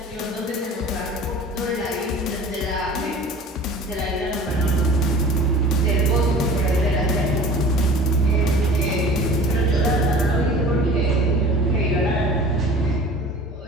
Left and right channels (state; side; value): normal; both; correlation 0.42